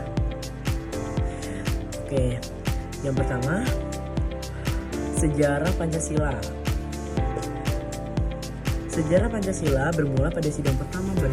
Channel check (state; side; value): identical; both; correlation 1.00